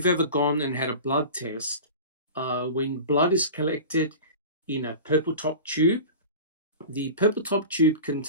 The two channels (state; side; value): inverted; both; correlation -0.34